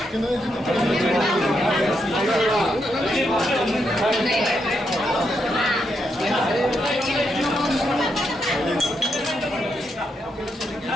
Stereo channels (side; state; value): both; normal; correlation 0.81